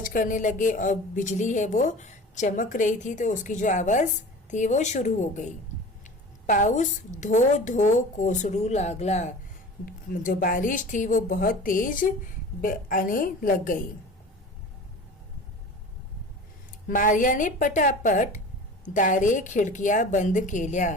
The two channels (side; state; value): both; normal; correlation 0.38